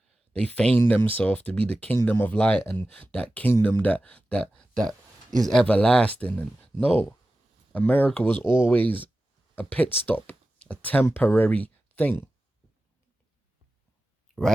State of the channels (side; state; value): both; normal; correlation 0.94